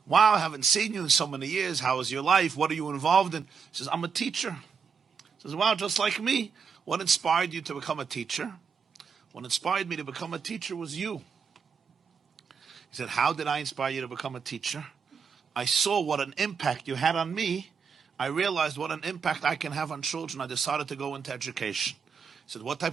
Wow, I haven't seen you in so many years. How is your life? What are you involved in?" He says, "I'm a teacher." He says, "Wow, just like me. What inspired you to become a teacher?" "What inspired me to become a teacher was you." He said, "How did I inspire you to become a teacher?" "I saw what an impact you had on me. I realized what an impact I can have on children. I decided to go into education." He said, "What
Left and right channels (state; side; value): quieter; left; 6.1 dB